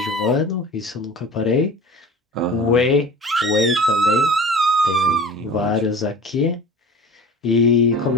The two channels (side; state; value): both; normal; correlation 0.39